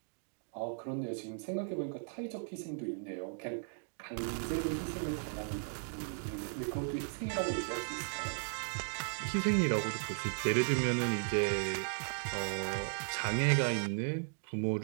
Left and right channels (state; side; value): silent; left; digital silence